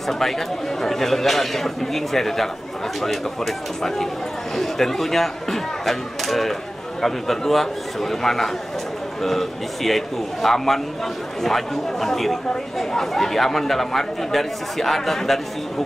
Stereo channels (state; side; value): normal; both; correlation 0.96